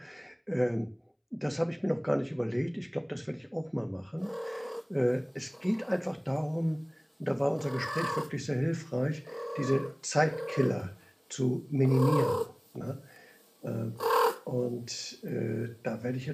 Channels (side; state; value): both; identical; correlation 1.00